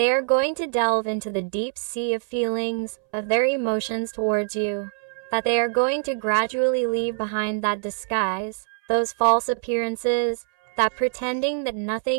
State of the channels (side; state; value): left; silent; 62 dB below the other